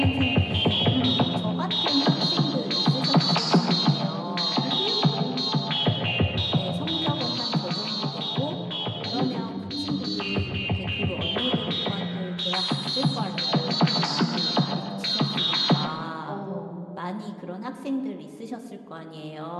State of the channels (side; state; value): both; identical; correlation 1.00